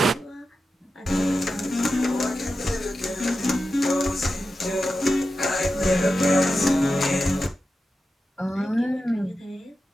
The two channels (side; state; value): both; normal; correlation 0.91